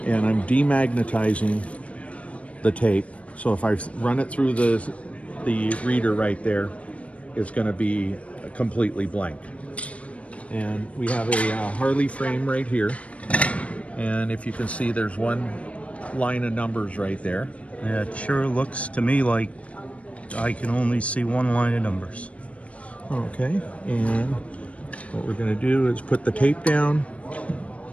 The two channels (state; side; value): late; right; 0.064 ms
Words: and I'm demagnetizing the tape. So if I run it through the reader right there, it's going to be completely blank. And we have a Harley frame right here, and if you can see, there's one line of numbers right there. Yeah, it sure looks to me like I can only see one line of numbers. Okay, and what we're going to do is put the tape down.